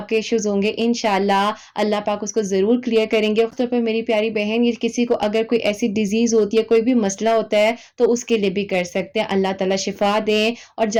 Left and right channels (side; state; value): both; identical; correlation 1.00